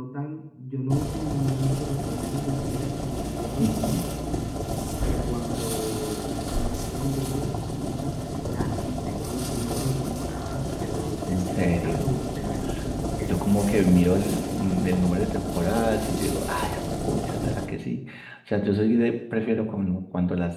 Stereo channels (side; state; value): both; identical; correlation 1.00